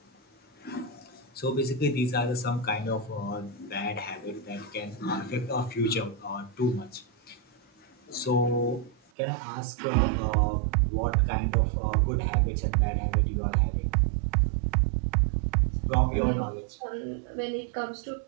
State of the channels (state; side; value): drops out; left; at 9.0 s